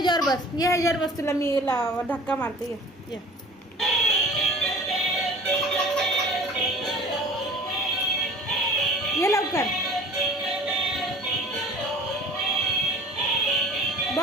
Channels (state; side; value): normal; both; correlation 0.46